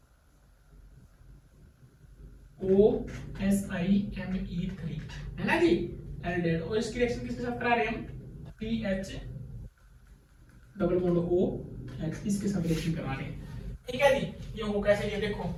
OSiMe3 है ना जी, एल्डिहाइड, और इसकी रिएक्शन किसके साथ करा रहे हैं हम, PH double bond O H, इसके साथ रिएक्शन करा रहे हैं। ठीक है जी, ये हो कैसे, ये देखो,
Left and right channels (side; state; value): both; identical; correlation 1.00